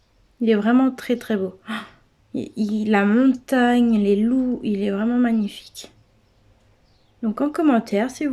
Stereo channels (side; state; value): both; identical; correlation 1.00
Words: Il est vraiment très très beau. La montagne, les loups, il est vraiment magnifique. Donc en commentaire, si